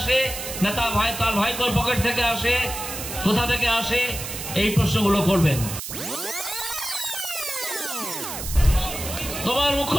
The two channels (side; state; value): right; noise; hiss, 7 dB below the sound